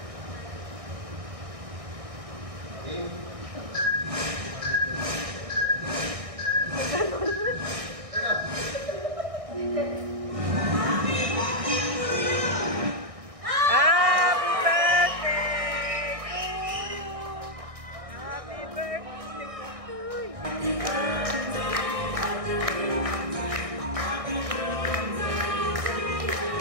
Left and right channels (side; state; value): left; late; 1.6 ms